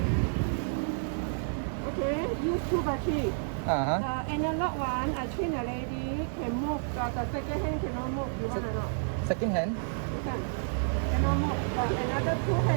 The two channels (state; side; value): silent; left; digital silence